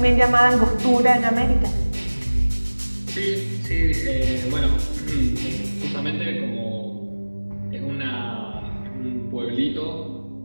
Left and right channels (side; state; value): both; inverted; correlation -1.00